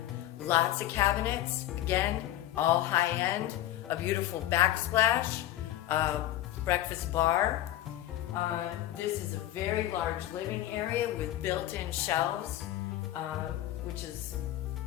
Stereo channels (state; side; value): quieter; right; 13.9 dB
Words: Lots of cabinets, again, all high end, a beautiful backsplash, breakfast bar. This is a very large living area with built-in shelves, which is